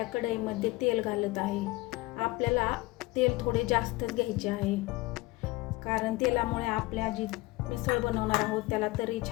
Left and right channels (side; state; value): right; quieter; 21.2 dB